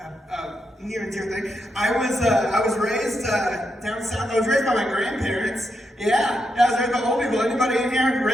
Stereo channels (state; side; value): normal; both; correlation 0.83